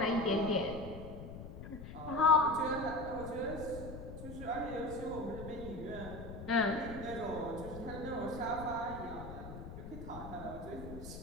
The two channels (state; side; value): noise; left; rumble, 10 dB below the sound